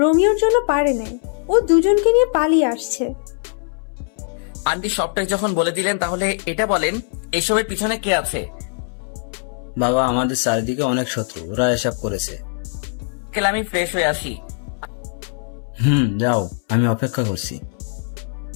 জন্য পারে নাই। ও দুজনকে নিয়ে পালিয়ে আসছে। আন্টি সবটাই যখন বলে দিলেন তাহলে এটা বলেন এসবের পিছনে কে আছে? বাবা, আমাদের চারিদিকে অনেক শত্রু, ওরা এসব করেছে। আঙ্কেল আমি ফ্রেশ হয়ে আসি। যাও, আমি অপেক্ষা করছি।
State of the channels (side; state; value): right; silent; 65 dB below the other